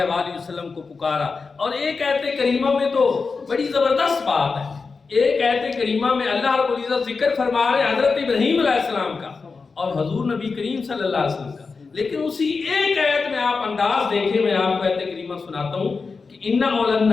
وآلہ وسلم کو پکارا۔ اور ایک آیت کریمہ میں تو بڑی زبردست بات ہے، ایک آیت کریمہ میں اللہ رب العزت ذکر فرما رہے حضرت ابراہیم علیہ السلام کا اور حضور نبی کریم صلی اللہ علیہ وسلم کا، لیکن اسی ایک آیت میں آپ انداز دیکھیں، میں آپ کو آیت کریمہ سناتا ہوں کہ ان اول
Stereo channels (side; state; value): right; quieter; 4.6 dB